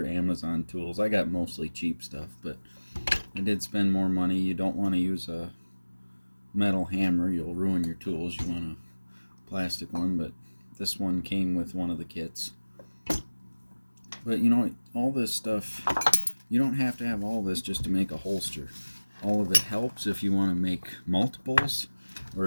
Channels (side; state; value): both; inverted; correlation -1.00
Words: Amazon tools. I got mostly cheap stuff, but I did spend more money. You don't want to use a metal hammer. You'll ruin your tools. You want a plastic one, but this one came with one of the kits. But you know, all this stuff, you don't have to have all this just to make a holster. All of it helps if you want to make multiples, or